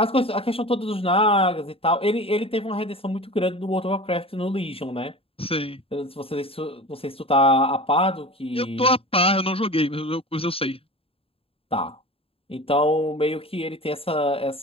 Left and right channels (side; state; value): right; late; 0.27 ms